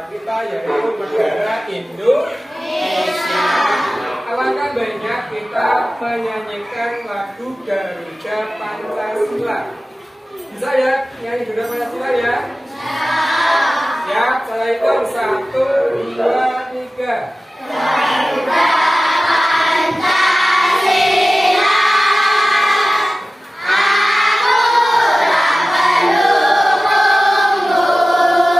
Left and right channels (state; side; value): normal; both; correlation 0.96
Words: kita, yaitu negara Indonesia, alangkah baiknya kita menyanyikan lagu Garuda Pancasila. Bisa ya nyanyi Garuda Pancasila ya? Ya, saya hitung 1, 2, 3. Garuda Pancasila.